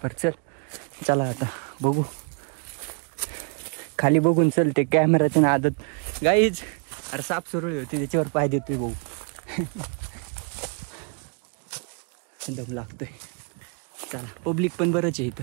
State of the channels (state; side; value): quieter; left; 39.7 dB